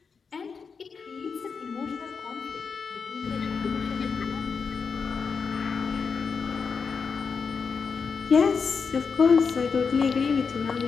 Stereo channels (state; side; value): quieter; right; 5.5 dB